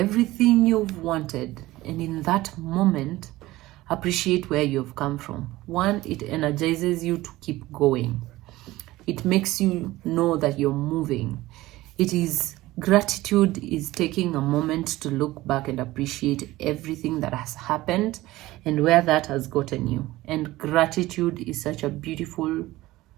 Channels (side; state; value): left; quieter; 17.7 dB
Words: you've wanted. And in that moment, appreciate where you've come from. One, it energizes you to keep going. It makes you know that you're moving. Gratitude is taking a moment to look back and appreciate everything that has happened and where that has gotten you. And gratitude is such a beautiful,